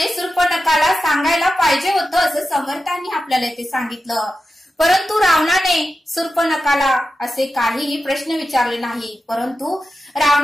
शूर्पणखाला सांगायला पाहिजे होतं असं समर्थांनी आपल्याला इथे सांगितलं। परंतु रावणाने शूर्पणखाला असे काहीही प्रश्न विचारले नाही, परंतु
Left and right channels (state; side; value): normal; both; correlation 0.92